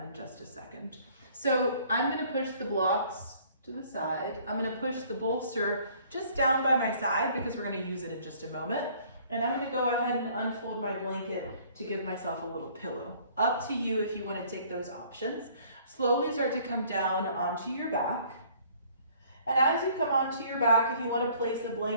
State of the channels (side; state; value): both; inverted; correlation -0.57